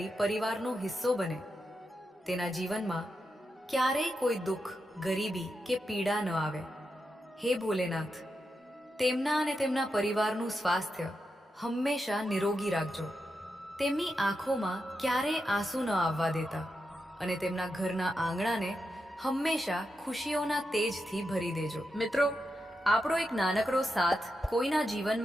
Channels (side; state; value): both; normal; correlation 0.87